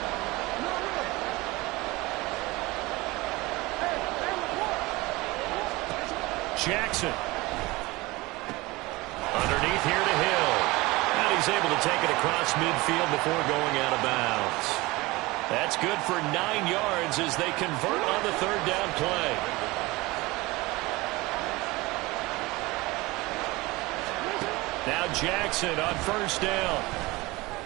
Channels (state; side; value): quieter; left; 21.7 dB